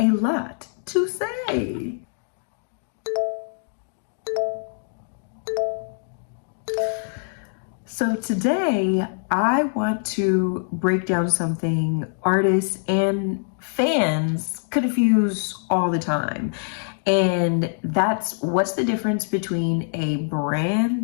lot to say. So today I want to break down something artists and fans confuse all the time. And that's what's the difference between a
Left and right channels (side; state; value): right; silent; digital silence